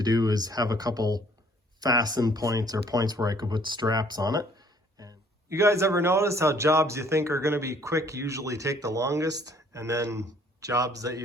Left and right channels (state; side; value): normal; both; correlation 0.60